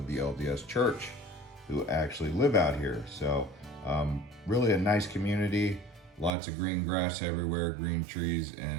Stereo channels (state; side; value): drops out; left; at 6.3 s